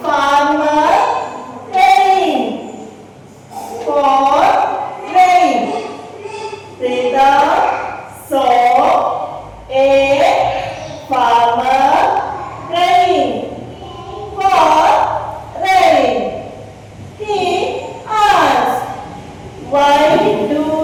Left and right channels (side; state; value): both; identical; correlation 1.00